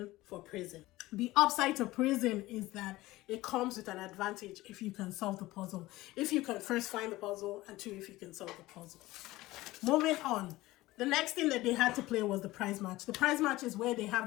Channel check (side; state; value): right; quieter; 18.2 dB